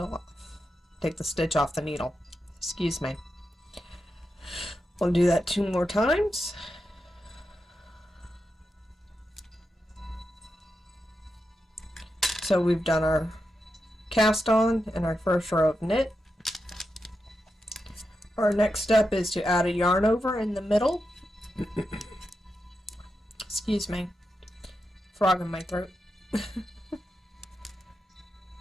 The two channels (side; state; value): both; normal; correlation 0.88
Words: off. Take the stitch off the needle. Excuse me. We'll do that 2 more times. So we've done our cast on and our first row of knit. Our next step is to add a yarn over in the middle. Excuse me. Frog in my throat.